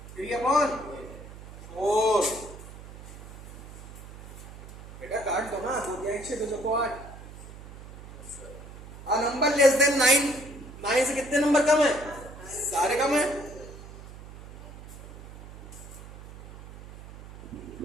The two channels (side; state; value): right; noise; hum, 15 dB below the sound